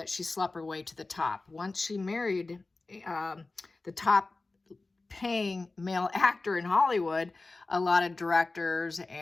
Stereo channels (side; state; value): right; quieter; 3.4 dB